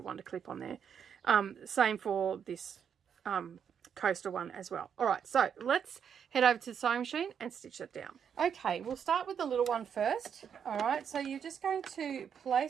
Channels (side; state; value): left; quieter; 7.7 dB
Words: wonder clip on there. Same for this coaster one as well. All right, so let's head over to the sewing machine and stitch it down. Okay, we'll start with the little one first. All right, so you're just going to